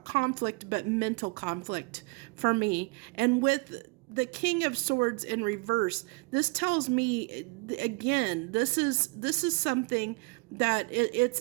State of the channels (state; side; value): quieter; left; 29.8 dB